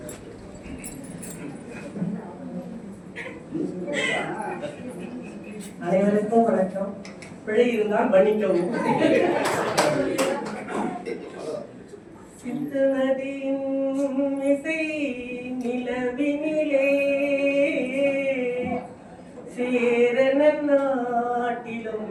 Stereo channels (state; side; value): identical; both; correlation 1.00